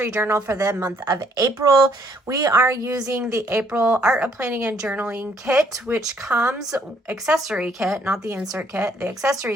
journal for the month of April. We are using the April Art of Planning and Journaling kit, which comes, accessory kit, not the insert kit, the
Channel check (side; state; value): both; normal; correlation 0.66